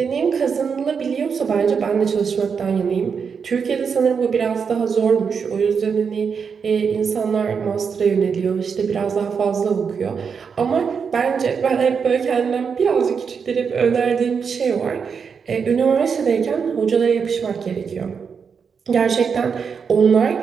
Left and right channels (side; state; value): left; quieter; 6.2 dB